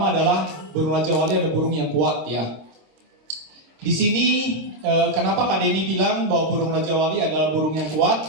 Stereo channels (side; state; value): left; late; 26 ms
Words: adalah burung Raja Wali adalah burung yang kuat ya. Di sini kenapa Kak Denny bilang bahwa burung Raja Wali adalah burung yang